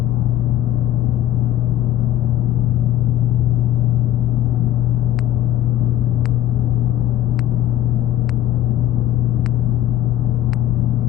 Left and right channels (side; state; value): right; quieter; 12.6 dB